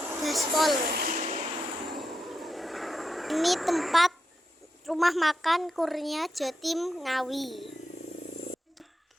Ini tempat rumah makan Kurnia Jatim Ngawi.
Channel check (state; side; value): normal; both; correlation 0.86